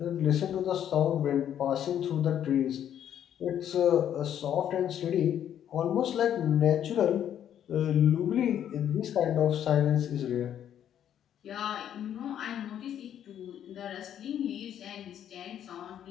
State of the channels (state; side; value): quieter; right; 10.0 dB